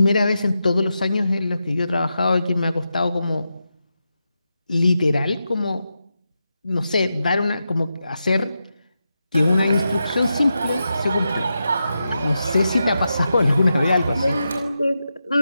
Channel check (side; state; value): both; inverted; correlation -0.88